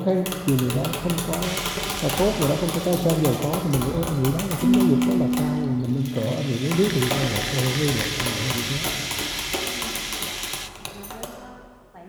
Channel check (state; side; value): identical; both; correlation 1.00